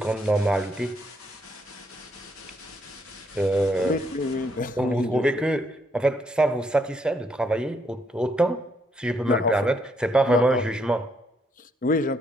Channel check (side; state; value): both; normal; correlation 0.73